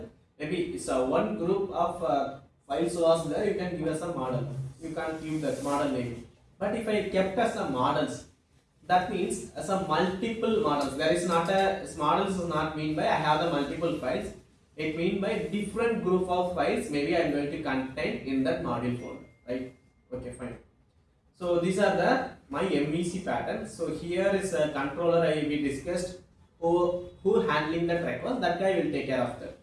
maybe it's a one group of files was there, you can give us a model. You can't give that model name. But if I kept as a models, that means as a multiple models. There is not a models is not mean by I have the multiple files. It mean by different group of files. Maybe I am going to contain in that module folder, right? Okay, fine. So these are the my MVC pattern. So here is a controller we discussed who handling that request. That guy will take care of that.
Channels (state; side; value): identical; both; correlation 1.00